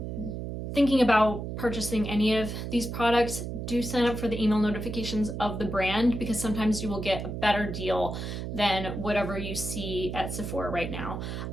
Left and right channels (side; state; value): right; noise; hum, 5 dB below the sound